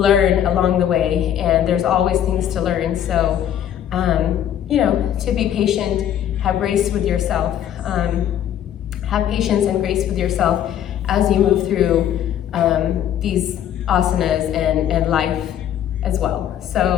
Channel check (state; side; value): quieter; right; 10.4 dB